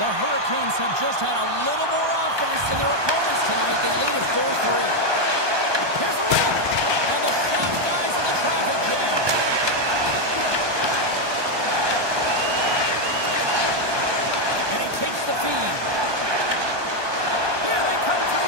the Hurricanes have just had a little more offense than their opponents tonight. They lead it 4-3. Here's a rip, and the shot dies in the traffic jam. And he takes the feed. Here they come through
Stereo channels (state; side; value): late; left; 1.2 ms